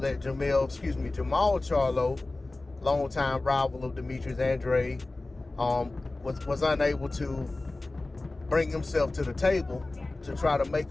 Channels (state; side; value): quieter; right; 3.0 dB